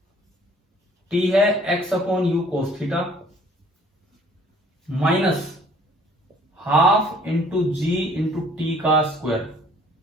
T है x upon u cos theta minus half into g into t का square,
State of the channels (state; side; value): normal; both; correlation 0.56